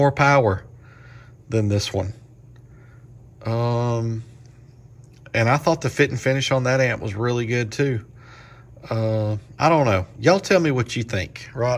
power than this one. And I thought the fit and finish on that amp was really good too. I don't know. Y'all tell me what you think,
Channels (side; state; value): both; identical; correlation 1.00